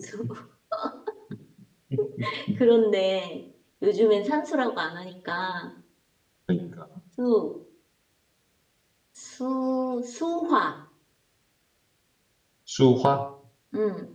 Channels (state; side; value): identical; both; correlation 1.00